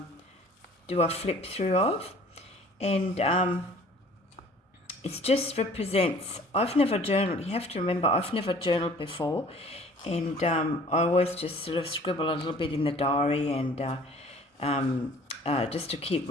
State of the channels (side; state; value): both; normal; correlation 0.51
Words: do a flip through of. And it just represents, I've never journaled, you have to remember I've never journaled before. And I always just sort of scribble a little bit in the diary and just to keep